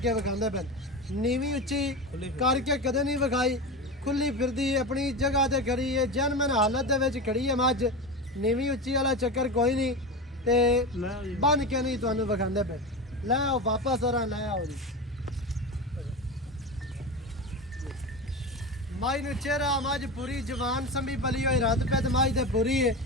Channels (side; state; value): both; normal; correlation 0.23